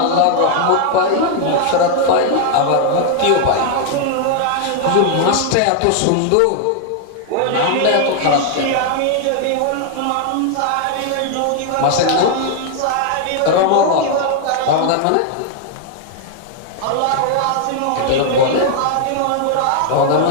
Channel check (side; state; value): both; different; correlation 0.00